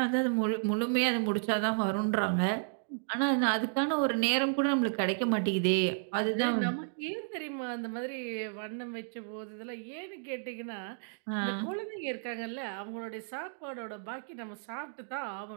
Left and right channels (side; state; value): left; silent; digital silence